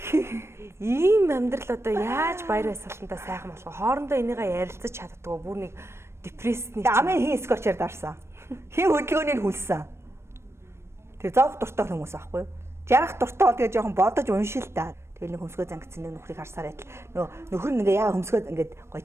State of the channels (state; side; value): late; left; 0.13 ms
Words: Ийм амьдрал одоо яаж баяр баясгалантаа сайхан болох вэ? Хоорондоо энийгээ ярилцаж чаддгүй бүр нэг депрессний. Амын хин скотчээр дарсан. Хин хөдөлгөөнийг хүлсэн. Тэр зовх дуртай хүмүүс аахгүй юу? Жарах дуртай бол тэгээ жоохон бодож уншил та. Тэгэл нэг хөмсгөө зангидсан нэг нөхрийг харсаар байтал нөхөр нэгээ яа хөмсгөө ингээд гой